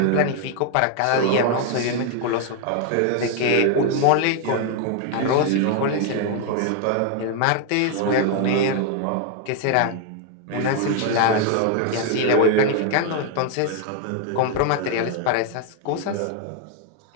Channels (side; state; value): both; different; correlation 0.01